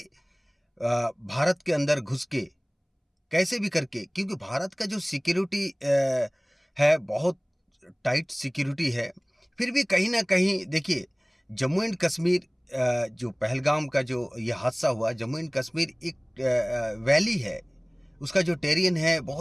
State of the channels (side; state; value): both; identical; correlation 1.00